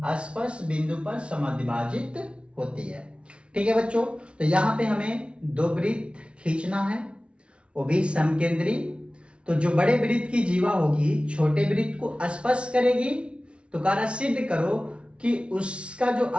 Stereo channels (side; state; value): left; late; 0.059 ms